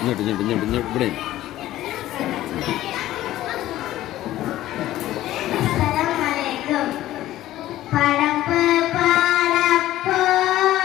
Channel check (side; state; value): right; quieter; 14.6 dB